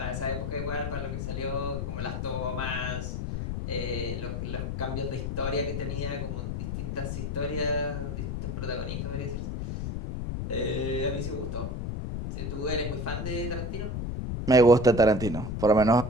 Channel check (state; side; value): noise; left; rumble, 3 dB below the sound